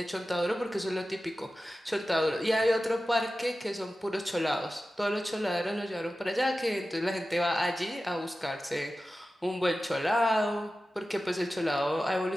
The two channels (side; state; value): both; normal; correlation 0.94